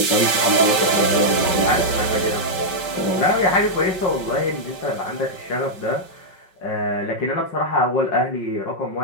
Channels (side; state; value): right; late; 5.1 ms